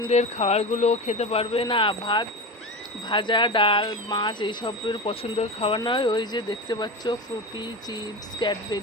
খাবারগুলো খেতে পারবে। না ভাত, ভাজা, ডাল, মাছ এইসবের পছন্দের খাবার নয়, ওই যে দেখতে পাচ্ছ ফ্রুটি, চিপস,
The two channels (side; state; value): both; normal; correlation 0.24